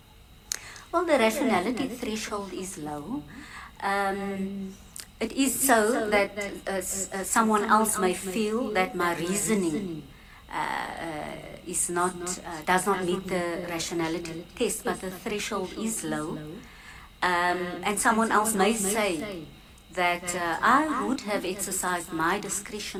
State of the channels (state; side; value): identical; both; correlation 1.00